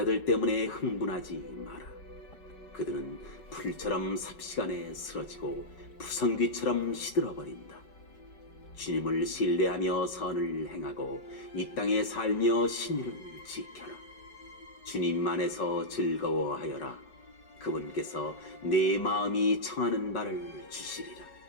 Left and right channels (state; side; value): late; right; 5.4 ms